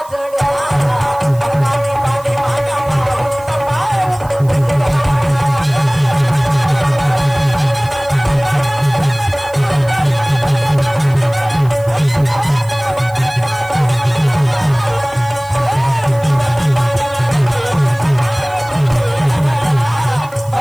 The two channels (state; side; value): noise; right; hiss, 23 dB below the sound